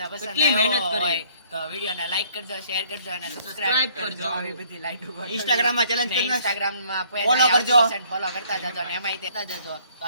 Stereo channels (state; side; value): inverted; both; correlation -0.61